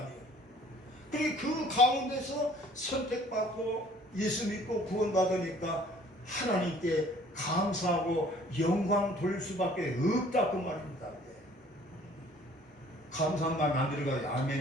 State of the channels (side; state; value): both; normal; correlation 0.55